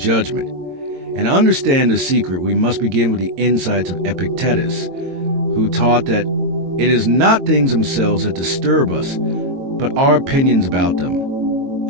And to understand the secret, we must begin with the insights of Epictetus, who taught that it is not things themselves that disturb us, but our opinions about them.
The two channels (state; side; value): late; left; 22 ms